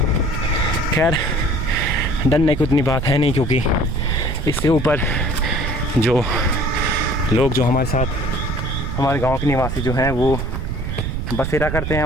खैर डरने की उतनी बात है नहीं, क्योंकि इससे ऊपर जो लोग जो हमारे साथ, हमारे गांव के निवासी जो हैं वो बसेरा करते हैं,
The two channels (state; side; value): noise; right; rumble, 3 dB below the sound